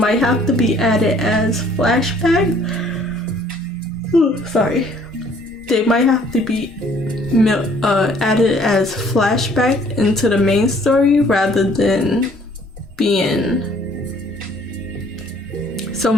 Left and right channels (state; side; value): normal; both; correlation 0.59